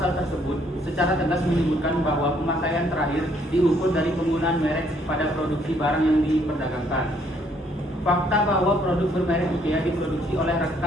tersebut secara tegas menyebutkan bahwa pemakaian terakhir diukur dari penggunaan merek pada produksi barang yang diperdagangkan. Fakta bahwa produk bermerek IKEA diproduksi oleh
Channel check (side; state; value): both; normal; correlation 0.67